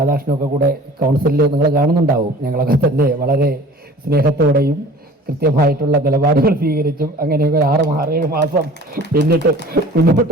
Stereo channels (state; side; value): normal; both; correlation 0.45